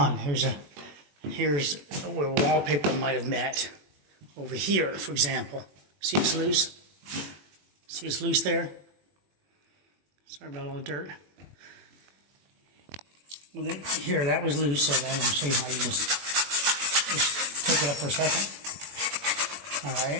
Here's where wallpaper might have met. Over here, for example. See it's loose? See it's loose there? Sorry about all the dirt. Well, then, here, that was loose, so I'm going to show you how you just take it up for a second. Alright.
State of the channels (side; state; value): left; late; 21 ms